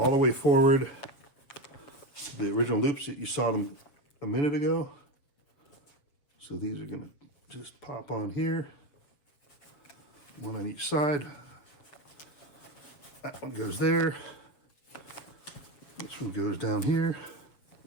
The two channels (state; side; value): late; right; 7.5 ms